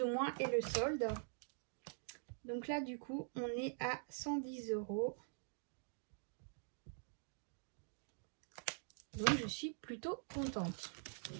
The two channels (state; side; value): silent; left; digital silence